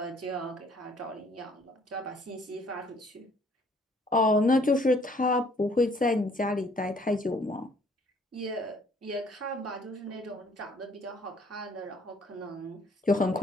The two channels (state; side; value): normal; both; correlation 0.61